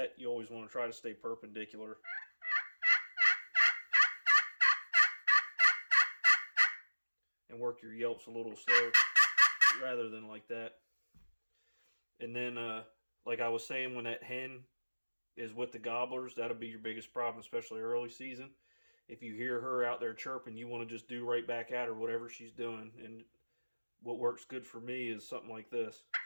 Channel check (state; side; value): inverted; both; correlation -1.00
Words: You always want to try to stay perpendicular. And work your yelps a little slow rather than like that. And then, like I was saying, when that hen is with the gobblers, that'll be your biggest problem, especially early season. If you hear her out there chirping, you want to just do right back at her, whatever she's doing. And what works good for me is something like this.